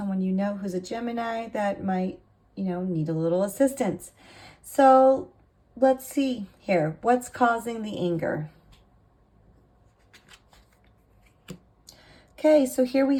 you know who's a Gemini that might, need a little assistance. So let's see here. What's causing the anger? Okay, so here we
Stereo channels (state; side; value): identical; both; correlation 1.00